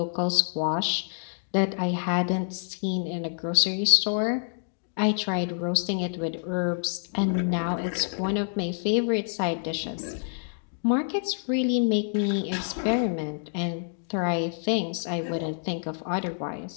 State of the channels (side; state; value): right; silent; digital silence